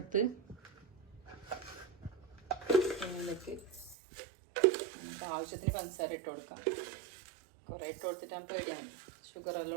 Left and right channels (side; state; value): left; drops out; at 4.0 s